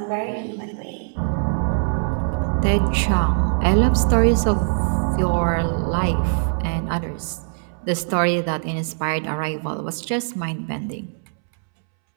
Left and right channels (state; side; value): silent; left; 64 dB below the other